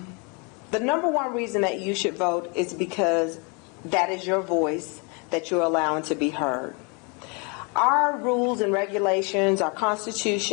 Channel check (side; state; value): right; quieter; 32.6 dB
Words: number one reason that you should vote is because that is your voice that you're allowing to be heard. Our rules and regulations, our